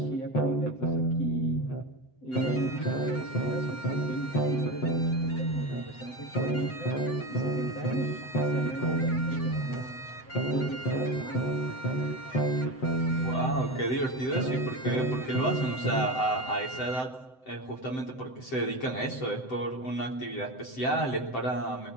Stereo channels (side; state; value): right; late; 7.8 ms